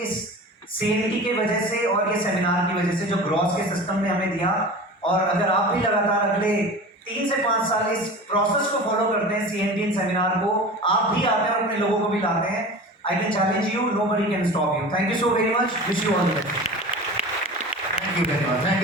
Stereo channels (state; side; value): normal; both; correlation 0.35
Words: इस CNT के वजह से और ये सेमिनार की वजह से, जो ग्रॉस के सिस्टम ने हमें दिया। और अगर आप भी लगातार अगले 3 से 5 साल इस प्रोसेस को फॉलो करते हैं, CNT सेमिनार को, आप भी आते हैं और अपने लोगों को भी लाते हैं, I can challenge you, nobody can stop you. Thank you so very much, wish you all the best. Thank you very much. Thank